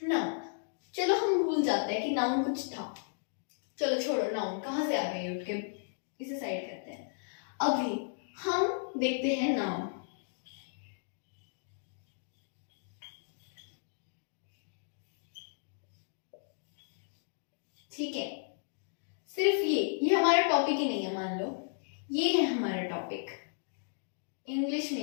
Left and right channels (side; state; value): right; silent; digital silence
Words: चलो हम भूल जाते हैं कि नाउन कुछ था। चलो छोड़ो, नाउन कहाँ से आ गई, उठ के इसे साइड करते हैं। अभी हम देखते हैं नाउन। ठीक है, सिर्फ ये हमारा टॉपिक ही नहीं है। मान लो ये है हमारा टॉपिक, इंग्लिश